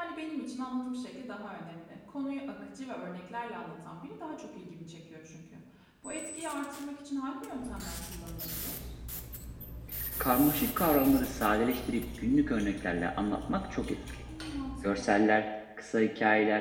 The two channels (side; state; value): both; identical; correlation 1.00